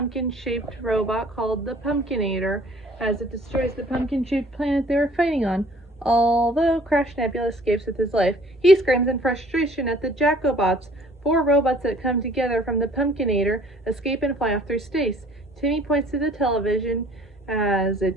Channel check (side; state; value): both; normal; correlation 0.54